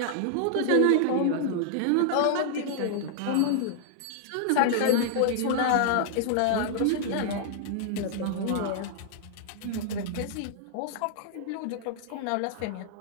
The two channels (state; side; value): different; both; correlation -0.01